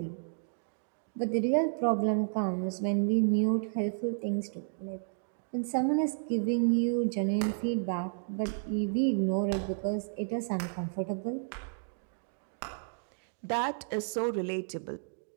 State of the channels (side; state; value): left; silent; digital silence